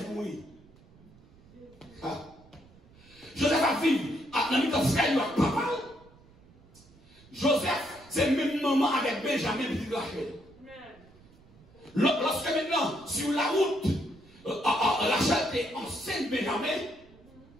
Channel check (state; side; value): noise; right; rumble, 26 dB below the sound